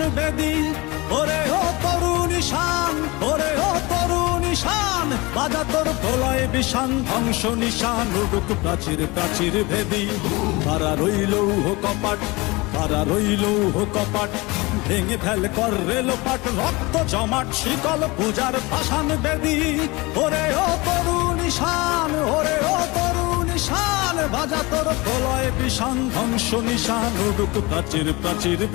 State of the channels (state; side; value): quieter; right; 23.8 dB